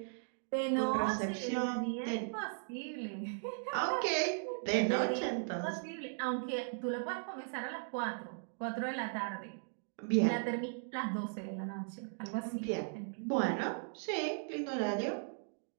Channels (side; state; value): left; silent; digital silence